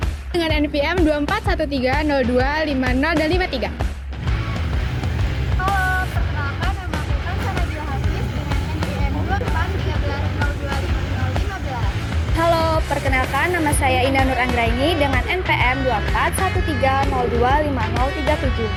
dengan NPM 24130250 dan 53. Halo, perkenalkan nama aku Kansana Nabila Hafiz dengan NPM 2413025015. Halo, perkenalkan nama saya Indah Nur Anggraini dengan NPM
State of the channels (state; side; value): identical; both; correlation 1.00